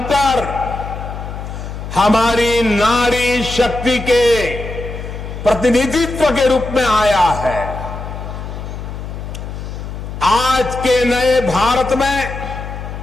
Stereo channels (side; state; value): left; noise; hum, 8 dB below the sound